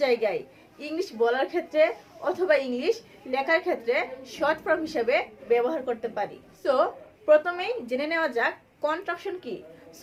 জায়গায় ইংলিশ বলার ক্ষেত্রে অথবা ইংলিশ লেখার ক্ষেত্রে শর্ট ফর্ম হিসেবে ব্যবহার করতে পারি। সো প্রথমেই জেনে নেওয়া যাক কন্ট্রাকশন কি।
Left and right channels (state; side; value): identical; both; correlation 1.00